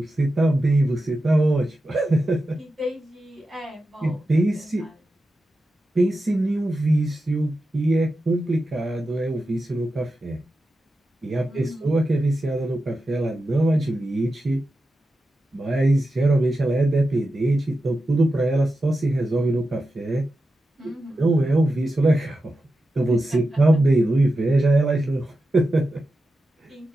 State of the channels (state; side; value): normal; both; correlation 0.91